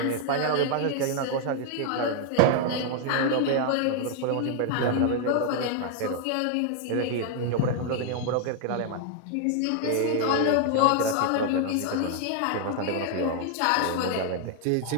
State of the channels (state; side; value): different; both; correlation 0.00